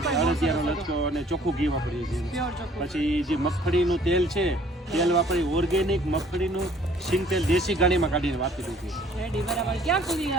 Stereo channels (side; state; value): both; normal; correlation 0.57